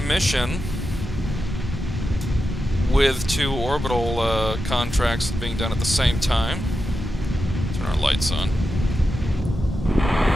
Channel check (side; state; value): both; normal; correlation 0.89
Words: with 2 orbital contracts being done at the same time. Turn our lights on.